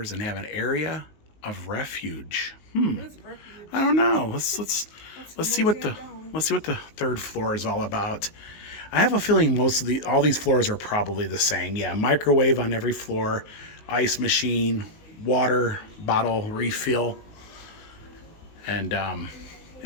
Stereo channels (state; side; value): late; right; 19 ms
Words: and have an area of refuge. What is refuge? I don't know. Let's see what the 3rd floor is all about. I have a feeling all these floors are probably the same. Yeah, microwave on every floor, ice machine, water bottle refill, and